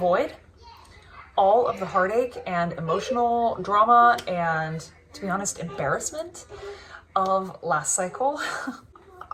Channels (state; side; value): identical; both; correlation 1.00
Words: all of the heartache and emotional drama and, to be honest, embarrassment of last cycle.